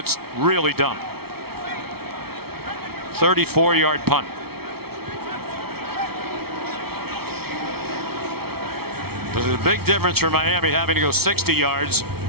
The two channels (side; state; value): left; late; 0.95 ms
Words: really dumb. 34-yard punt. There's a big difference for Miami having to go 60 yards